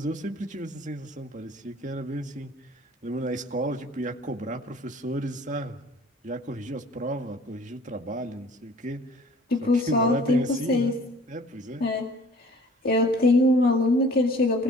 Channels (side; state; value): both; normal; correlation 0.50